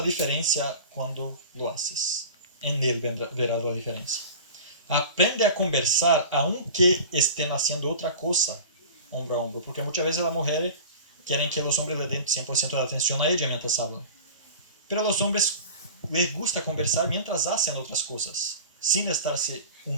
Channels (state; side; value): inverted; both; correlation -0.37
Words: diferencia cuando lo haces. En él verás la diferencia. Aprende a conversar aunque estén haciendo otra cosa, hombro a hombro, porque muchas veces las mujeres quieren que los hombres le den 100% de atención a ella mientras hablan. Pero a los hombres les gusta conversar mientras hacen otras cosas, sin estarse